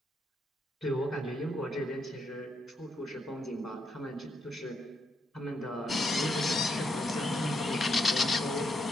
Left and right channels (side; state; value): both; normal; correlation 0.78